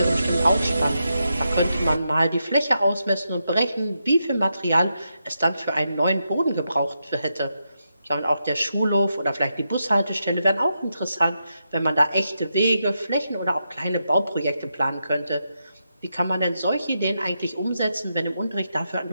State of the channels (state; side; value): inverted; both; correlation -0.85